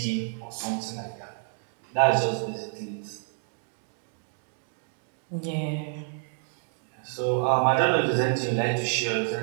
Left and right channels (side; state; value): left; silent; 58 dB below the other